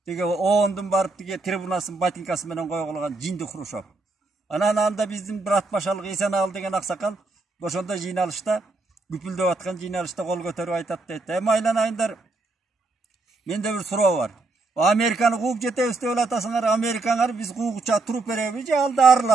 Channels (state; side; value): quieter; left; 3.4 dB